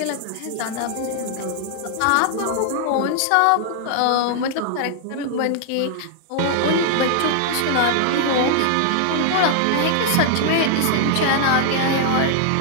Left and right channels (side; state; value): both; different; correlation 0.00